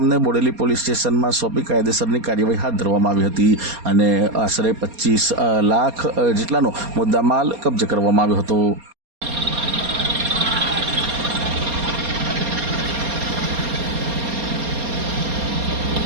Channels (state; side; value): late; left; 4.3 ms